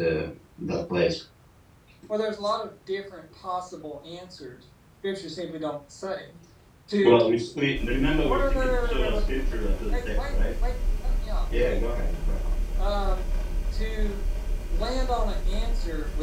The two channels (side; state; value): both; identical; correlation 1.00